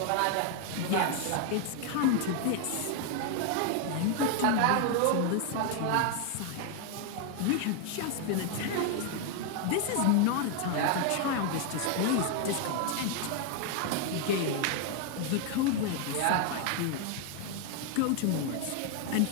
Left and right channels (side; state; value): both; different; correlation 0.01